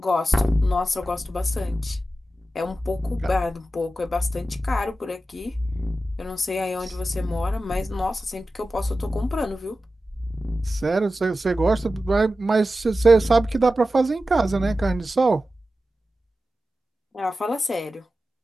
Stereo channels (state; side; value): normal; both; correlation 0.93